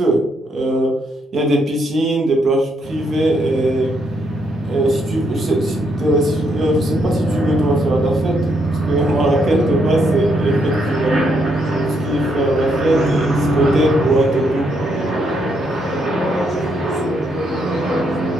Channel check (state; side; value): normal; both; correlation 0.75